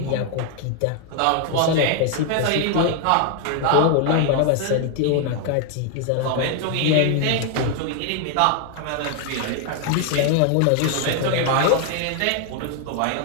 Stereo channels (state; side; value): different; both; correlation 0.00